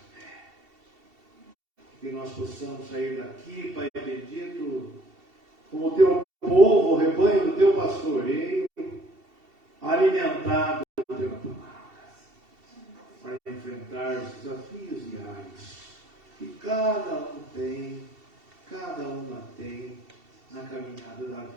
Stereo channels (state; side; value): late; left; 2.7 ms